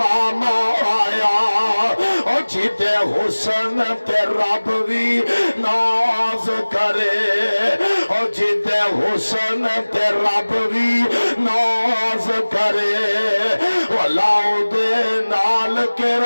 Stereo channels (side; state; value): both; inverted; correlation -1.00